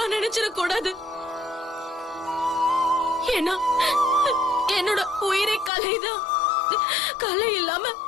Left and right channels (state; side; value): drops out; right; at 5.7 s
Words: நினைச்சிட கூடாது. ஏன்னா என்னோட உயிரை கலைதான். கலை இல்லாம